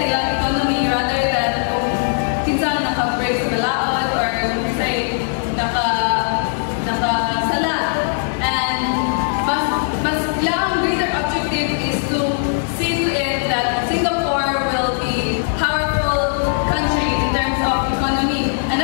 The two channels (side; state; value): right; silent; 63 dB below the other